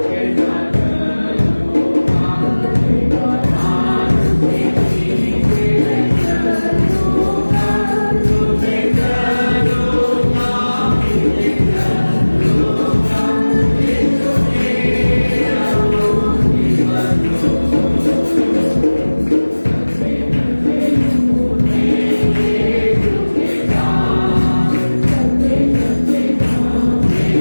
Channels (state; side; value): inverted; both; correlation -1.00